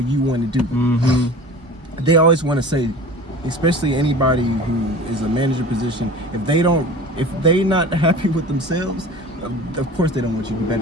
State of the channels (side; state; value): both; normal; correlation 0.39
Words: want to do them. They always want to say, especially anybody who is a manager position, if they not happy with themselves, of course they don't want you to be